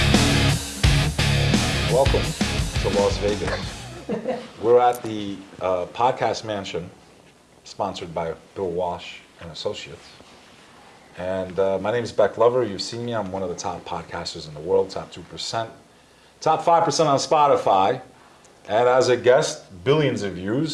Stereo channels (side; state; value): both; identical; correlation 1.00